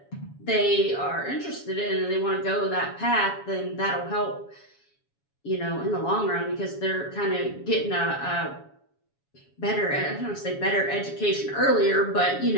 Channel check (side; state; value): right; late; 7.2 ms